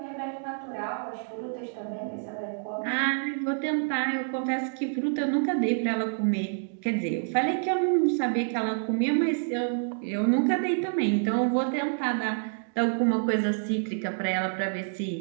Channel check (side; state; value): left; silent; digital silence